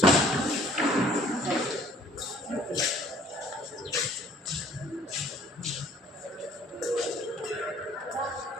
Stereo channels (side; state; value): both; normal; correlation 0.57